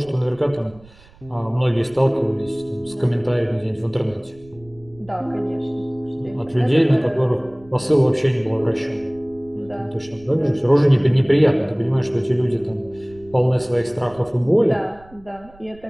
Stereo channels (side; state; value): right; noise; rumble, 25 dB below the sound